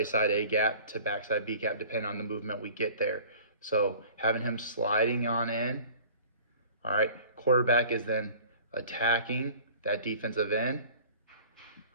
side A gap to backside B gap, depending on the movement we get there. So having him sliding on in. All right, quarterback is then attacking that defensive end.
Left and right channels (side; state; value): both; inverted; correlation -0.46